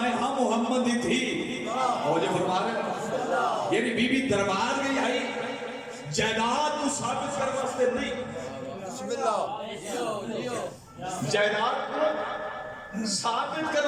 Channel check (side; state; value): both; identical; correlation 1.00